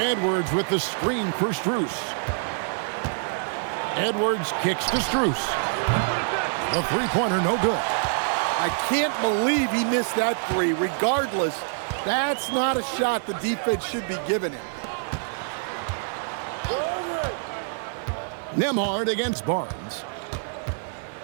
with the screen for Strus. Edwards kicks to Strus. The three-pointer, no good. I can't believe he missed that three. Regardless, that's not a shot the defense should be giving him. Nembhard against Barnes.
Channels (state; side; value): silent; left; digital silence